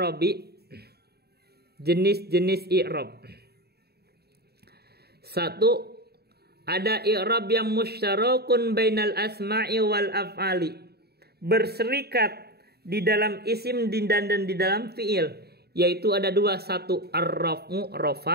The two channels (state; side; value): late; left; 0.47 ms